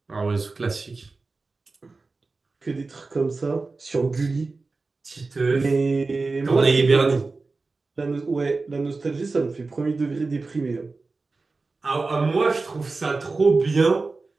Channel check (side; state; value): left; quieter; 3.8 dB